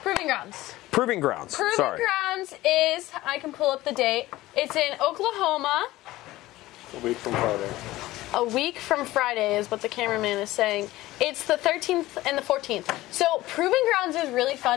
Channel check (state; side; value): quieter; right; 17.3 dB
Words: Proving Grounds. Proving Grounds. Proving Grounds is, I can pull up the date. It's in Oklahoma. A week from Friday. A week from Friday is what the cameraman is saying. It's the 13th and the 14th. So Proving Grounds is really